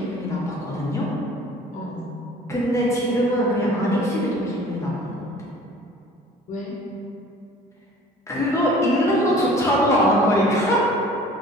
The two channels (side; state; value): both; normal; correlation 0.48